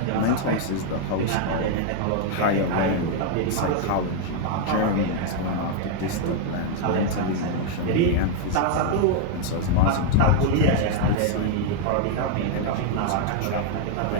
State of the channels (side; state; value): both; different; correlation 0.00